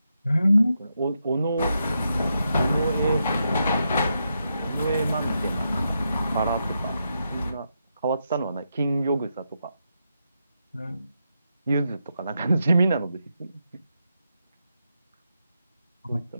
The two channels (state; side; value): inverted; both; correlation -0.84